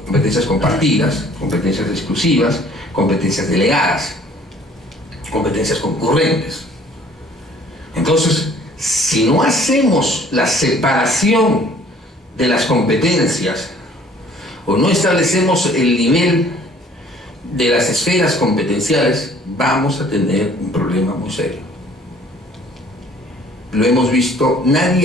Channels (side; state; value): both; normal; correlation 0.56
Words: competencias compartidas, competencias exclusivas, competencias delegadas, competencias concurrentes. Entonces, si no hacemos la separación de las competencias o no establecemos el nivel de las esferas competenciales, vamos a tener un problema muy serio. Lo hemos visto,